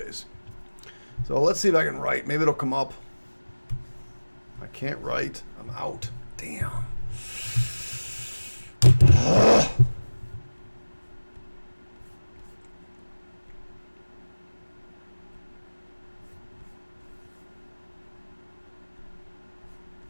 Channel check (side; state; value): both; inverted; correlation -1.00